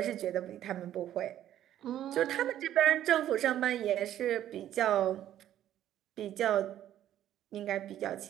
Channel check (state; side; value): quieter; left; 11.8 dB